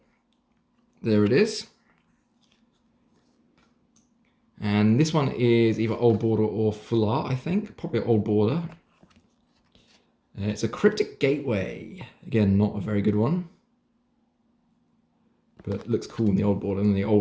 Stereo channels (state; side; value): identical; both; correlation 1.00